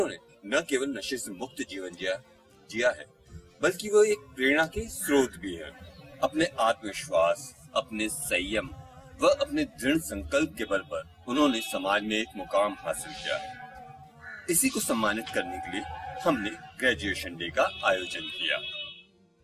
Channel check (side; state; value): both; identical; correlation 1.00